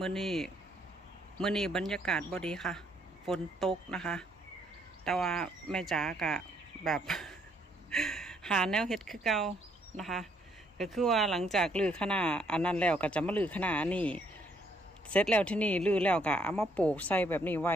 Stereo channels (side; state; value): both; normal; correlation 0.69